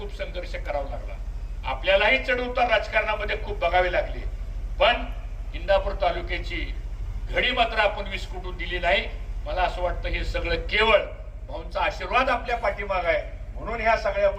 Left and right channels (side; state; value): both; identical; correlation 1.00